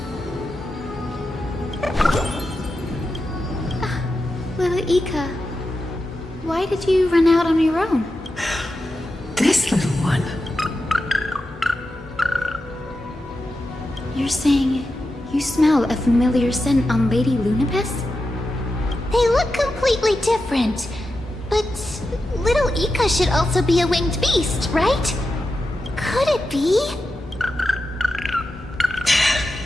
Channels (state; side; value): normal; both; correlation 0.90